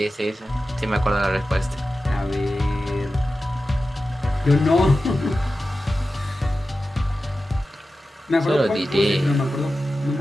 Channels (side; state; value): both; normal; correlation 0.93